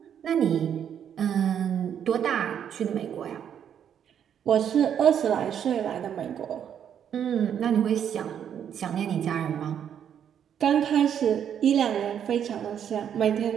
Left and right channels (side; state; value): left; quieter; 8.9 dB